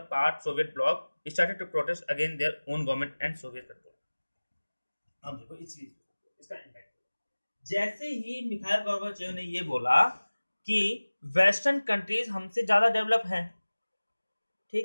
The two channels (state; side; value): inverted; both; correlation -1.00